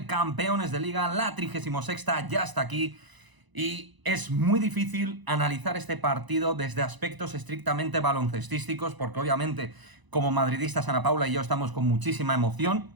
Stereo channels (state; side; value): late; left; 1.0 ms